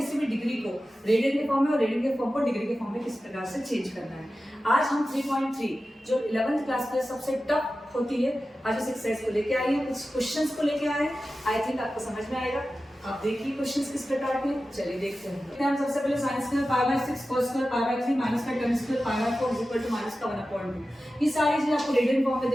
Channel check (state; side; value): normal; both; correlation 0.94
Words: भी डिग्री को रेडियन के फॉर्म में और रेडियन के फॉर्म को डिग्री के फॉर्म में किस प्रकार से चेंज करना है। आज हम 3.3 जो 11th क्लास में सबसे टफ होती है, आज उस एक्सरसाइज को लेके आए हैं, कुछ क्वेश्चंस को लेके आए हैं। आई थिंक आपको समझ में आएगा। आप देखिए क्वेश्चंस किस प्रकार के। चलिए देखते हैं। हम सबसे पहले साइंस में π/6 cos स्क्वायर π/3 माइनस का tan square π/4 is equal to minus का 1/2। ये सारी चीजें आपको रेडियन फॉर्म में